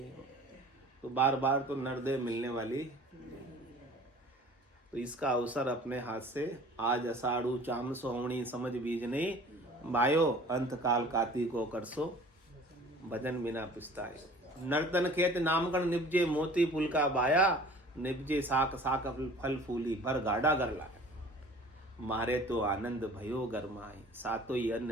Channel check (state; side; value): normal; both; correlation 0.47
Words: तो बार बार तो नर देह मिलने वाली, तो इसका अवसर अपने हाथ से आज अषाढ़ू चाम सोहणी समझ बीज नहीं, बायो अंत काल काती को करसो भजन बिना पुस्ताए। नर्तन खेत नामगण निपजे, मोती पुल का बाया, निपजे साक साक फल फूली, भर गाढ़ा कर लाए। मारे तो आनंद भयो गरमाई, सातो ही